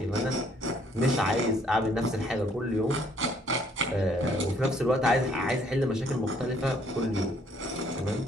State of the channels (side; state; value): both; normal; correlation 0.64